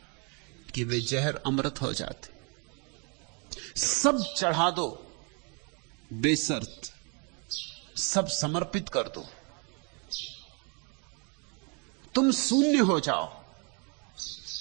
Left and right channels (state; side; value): quieter; left; 32.5 dB